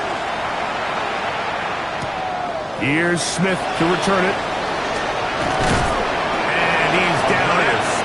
Here's Smith to return it. And he's down at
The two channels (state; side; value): identical; both; correlation 1.00